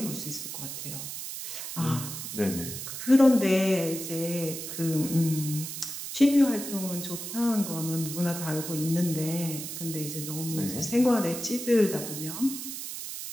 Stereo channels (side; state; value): right; noise; hiss, 7 dB below the sound